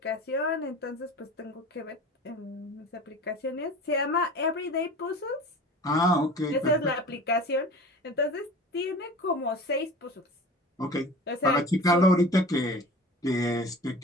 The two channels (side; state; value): both; normal; correlation 0.39